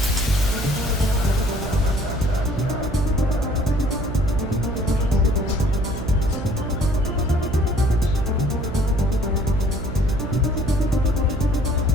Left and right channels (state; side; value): noise; right; hum, 6 dB below the sound